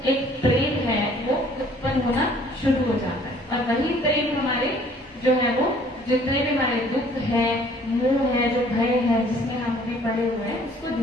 एक प्रेम है वो उत्पन्न होना शुरू हो जाता है। और वही प्रेम हमारे जो है वो जितने भी हमारे दुख है, मोह है, जो भय है जिसमें हम भी पड़े हुए हैं, उसको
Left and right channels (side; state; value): both; normal; correlation 0.57